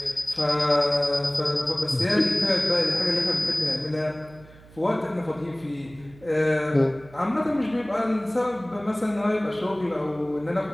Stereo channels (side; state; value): right; noise; hum, 23 dB below the sound